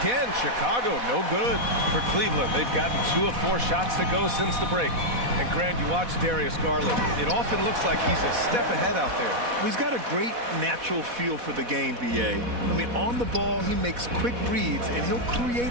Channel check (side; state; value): left; late; 4.1 ms